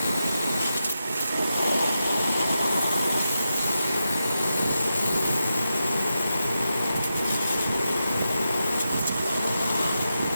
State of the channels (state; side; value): inverted; both; correlation -0.88